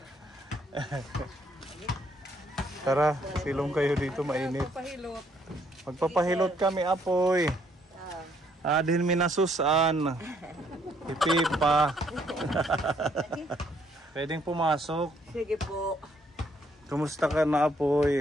Tara, silong kayo dito, mainit. Magpapahilot. Magpapahilot kami, apoy. Adhin minasusan. Ipipa. Pwedeng pumasok. Sige po. Kumusta ka na,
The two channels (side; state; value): both; normal; correlation 0.68